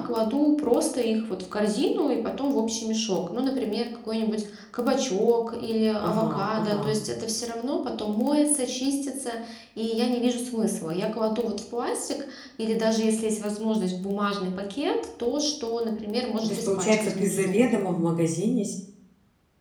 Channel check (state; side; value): identical; both; correlation 1.00